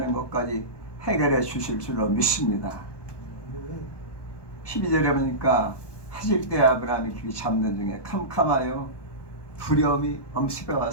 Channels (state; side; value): late; right; 1.2 ms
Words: 것까지 해결해 주실 줄로 믿습니다. 12절에 보니까 하질 때 아브라함이 길이 잡는 중에 캄캄하여 두려움이 엄습해